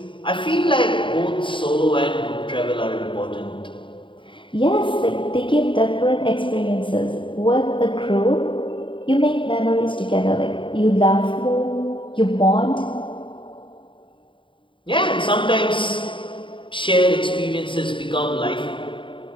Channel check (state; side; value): late; right; 0.24 ms